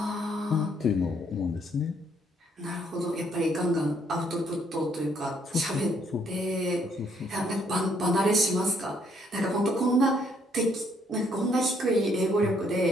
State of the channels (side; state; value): both; normal; correlation 0.69